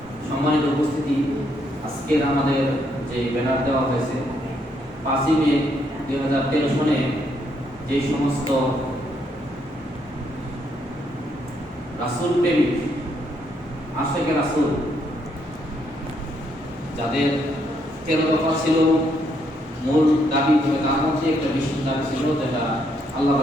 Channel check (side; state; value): both; normal; correlation 0.74